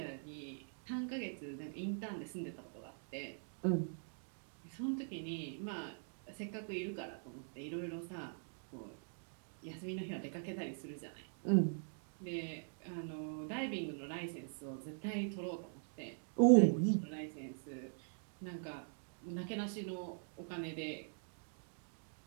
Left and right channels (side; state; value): left; silent; digital silence